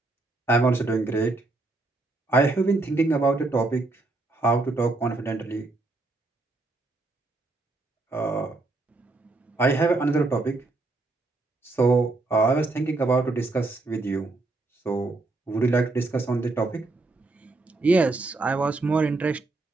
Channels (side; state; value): left; quieter; 3.3 dB